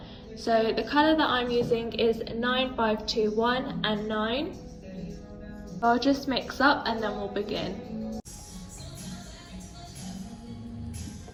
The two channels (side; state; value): both; identical; correlation 1.00